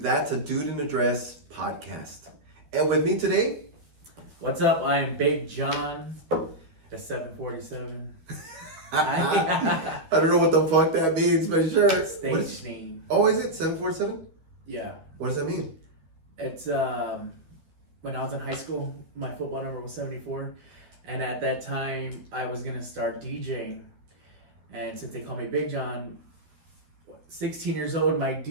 a Dude in a Dress podcast. And with me today, What's up? I am Big John, the 747. I don't know what the fuck that means, but sure. Stage name. Oh, is it 747? Yeah. What does that mean? It's when I was in high school, my football number was 74. And at that time, I was going to start DJing. And since they call me Big John, 16 years old, my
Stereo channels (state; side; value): late; left; 13 ms